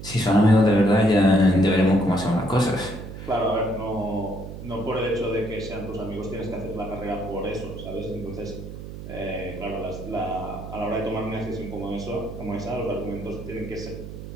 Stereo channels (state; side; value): noise; right; hum, 11 dB below the sound